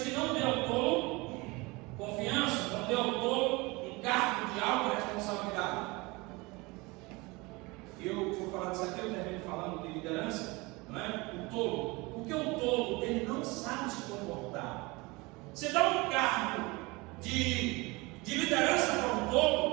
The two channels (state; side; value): quieter; left; 24.4 dB